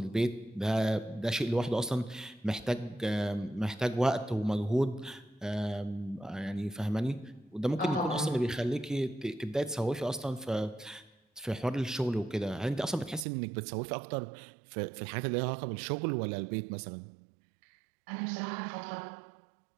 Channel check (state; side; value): drops out; left; at 13.2 s